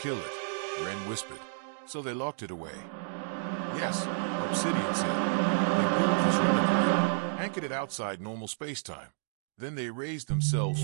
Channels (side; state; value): left; silent; digital silence